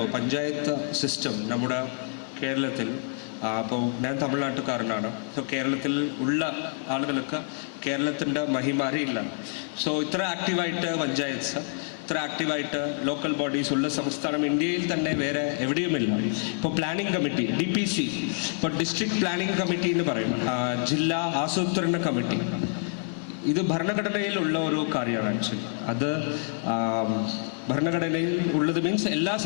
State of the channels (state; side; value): silent; right; 60 dB below the other